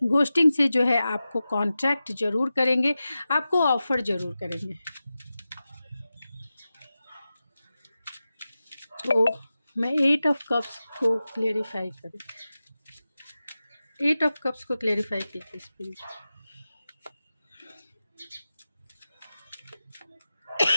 घोस्टिंग से जो है आपको कॉन्ट्रैक्ट ज़रूर करेंगे, आपको ऑफ़र ज़रूर करेंगे। तो मैं 8 ऑफ कप्स को क्लेरिफाई करूँ, 8 ऑफ कप्स को क्लेरिफाई कीजिए स्पिरिट।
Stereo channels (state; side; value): inverted; both; correlation -0.94